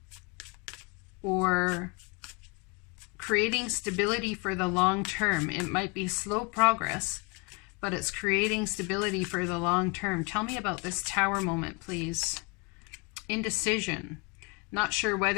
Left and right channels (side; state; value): right; quieter; 30.2 dB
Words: or creating stability for the long term. It might be slow progress, but it's creating stability for the long term. Tell me about this Tower moment, please. Indecision. Not sure